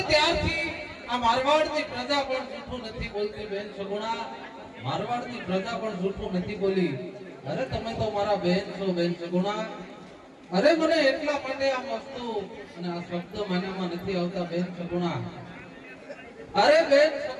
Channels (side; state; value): both; identical; correlation 1.00